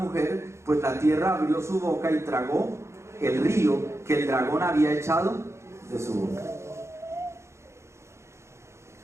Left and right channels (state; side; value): late; left; 0.13 ms